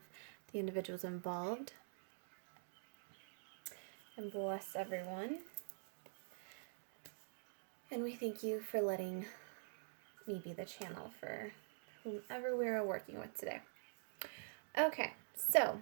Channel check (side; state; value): left; silent; digital silence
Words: the individuals involved. And bless everyone. And we thank you for letting me be the channel for whomever we are working with today. Okay, so